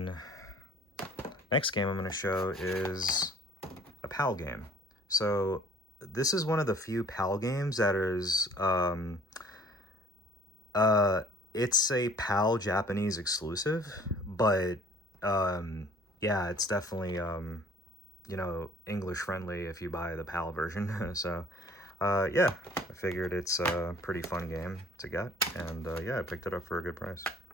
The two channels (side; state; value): both; normal; correlation 0.54